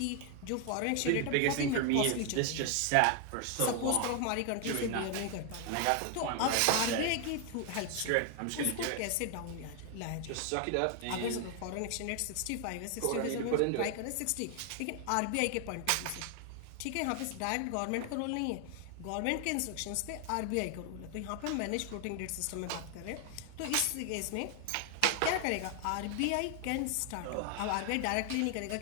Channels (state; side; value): different; both; correlation 0.00